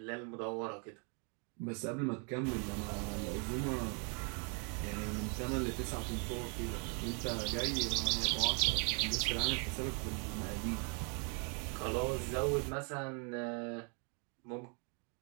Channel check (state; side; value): quieter; left; 38.0 dB